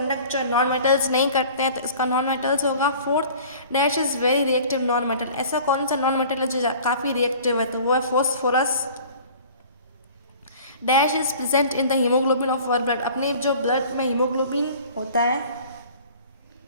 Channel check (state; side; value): inverted; both; correlation -0.46